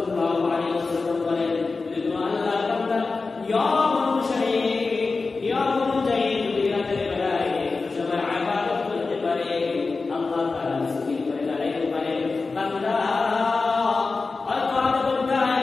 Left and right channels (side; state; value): right; quieter; 4.0 dB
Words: আলাইহি ওয়াসাল্লাম বলেন, যদি কোনো আল্লাহর বান্দা নিয়ম অনুসারে, নিয়ম অনুযায়ী যদি রাতের বেলায় সবাই ইবাদত করতে পারে, আল্লাহ তাআলা সুবহানাহু করে দাঁড়াইতে পারে, বান্দা হয়তো আধা ঘন্টা